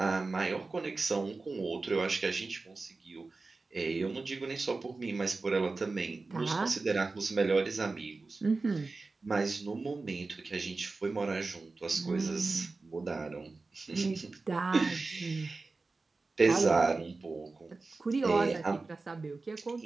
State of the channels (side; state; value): left; quieter; 3.7 dB